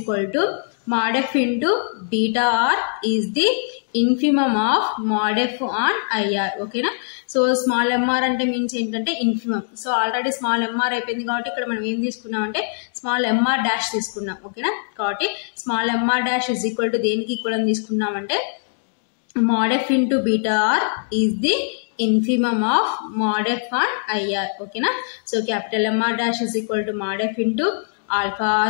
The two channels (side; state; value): right; silent; digital silence